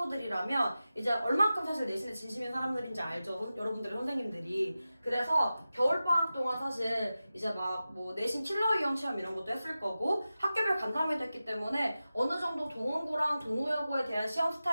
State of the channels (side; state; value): both; inverted; correlation -0.94